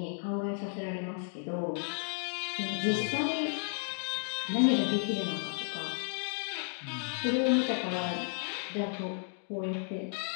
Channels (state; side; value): silent; right; 56 dB below the other